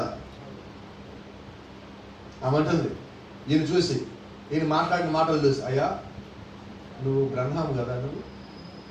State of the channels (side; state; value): both; identical; correlation 1.00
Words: ఆమంటుంది, ఈయన చూసి, ఈయన మాట్లాడిన మాటలు చూసి, అయ్యా నువ్వు బ్రహ్మం కదా నువ్వు